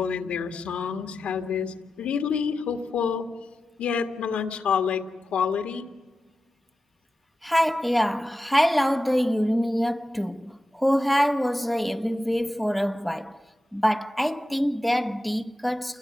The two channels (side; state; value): both; normal; correlation 0.92